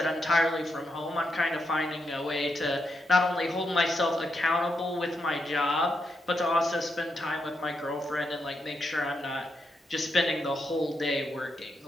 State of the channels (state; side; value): normal; both; correlation 0.83